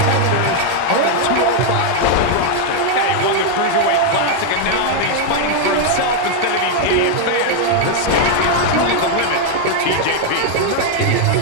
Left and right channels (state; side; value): different; both; correlation 0.00